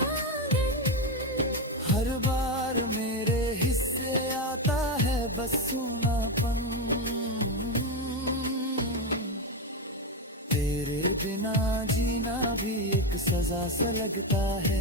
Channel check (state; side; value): normal; both; correlation 0.11